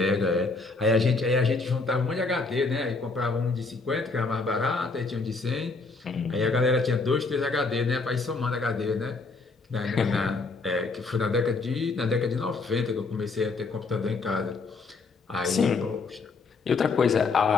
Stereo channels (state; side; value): quieter; right; 4.0 dB